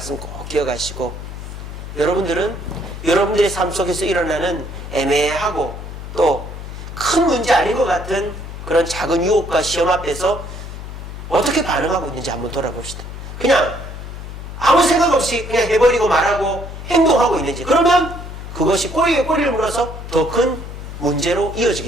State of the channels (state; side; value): noise; left; hum, 10 dB below the sound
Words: 꼭 기억하시고, 여러분들은 여러분들의 삶 속에서 일어나는 애매하고 또 큰 문제 아닌 것 같은 그런 작은 유혹과 시험 앞에서 어떻게 반응하고 있는지 한번 돌아봅시다. 그냥 아무 생각 없이 그냥 해버리고 말하고 행동하고 있는지, 그러면 그것이 꼬리에 꼬리를 물어서 더 큰 문제로